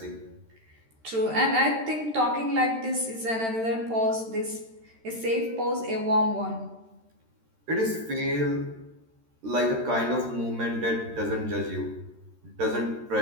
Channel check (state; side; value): late; left; 13 ms